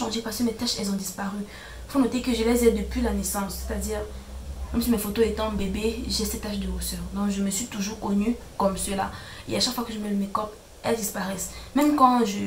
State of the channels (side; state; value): both; identical; correlation 1.00